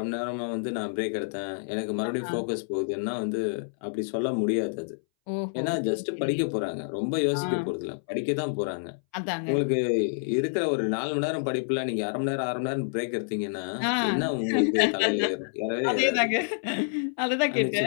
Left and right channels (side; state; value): right; silent; 59 dB below the other